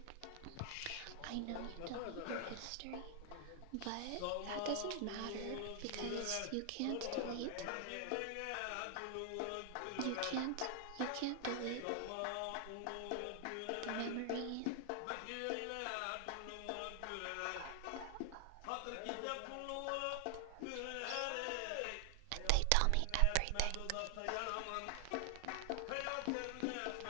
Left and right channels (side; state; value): both; different; correlation 0.00